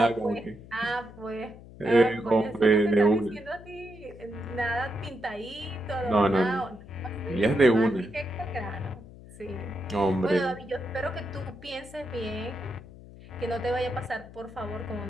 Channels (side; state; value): left; noise; hum, 18 dB below the sound